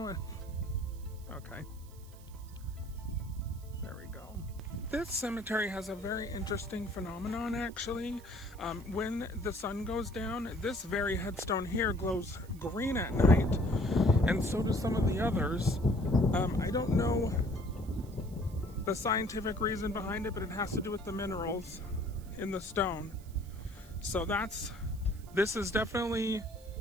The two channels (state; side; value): noise; right; hiss, 24 dB below the sound